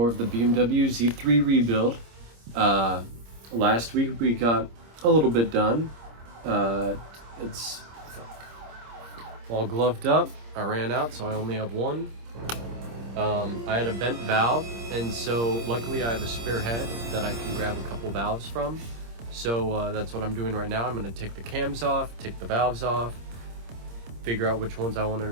of the BMW Z3 rebuild. Last week we got a little bit done. It's all gloved up. I ran out, so I only have one. I had a bent valve, and so luckily I have a spare head that I can grab a couple valves from. So that's what I'm doing right now. I'm going to take the cams off, take the valves off, figure out which ones I want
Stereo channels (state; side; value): late; left; 26 ms